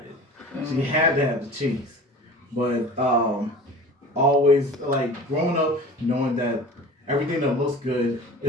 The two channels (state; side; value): normal; both; correlation 0.39